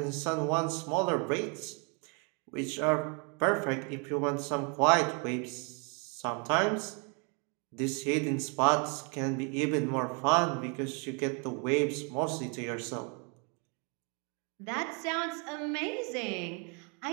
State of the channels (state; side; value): quieter; left; 35.3 dB